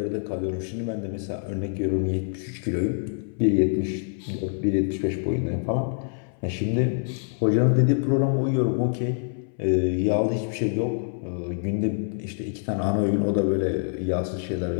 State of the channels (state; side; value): silent; right; 60 dB below the other